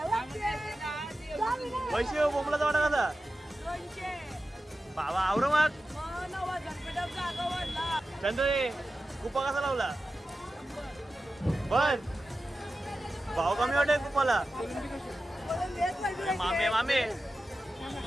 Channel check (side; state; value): both; normal; correlation 0.93